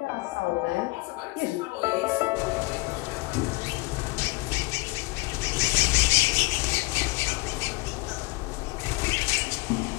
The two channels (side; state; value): right; quieter; 23.4 dB